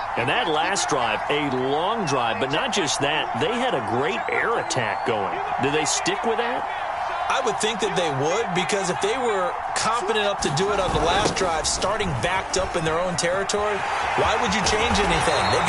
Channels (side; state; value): both; identical; correlation 1.00